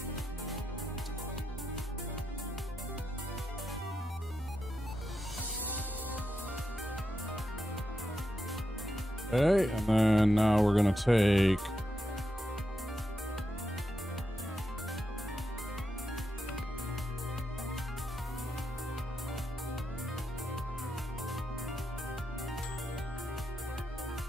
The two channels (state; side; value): normal; both; correlation 0.85